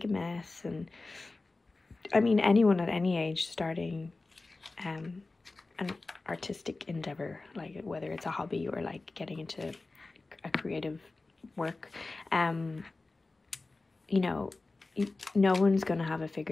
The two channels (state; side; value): quieter; right; 3.4 dB